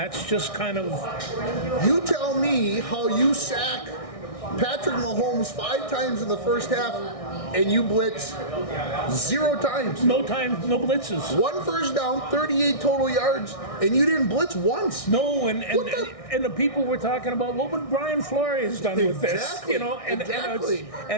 just kind of. You tell me how you sack Patrick Mahomes 5 times in the first half, and you blitz 0 times. No blitzes. 1 first down, 38 total yards, and you didn't blitz once. No, and the people were talking about what would Brian Flores done with this, Exactly.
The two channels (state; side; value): late; right; 1.6 ms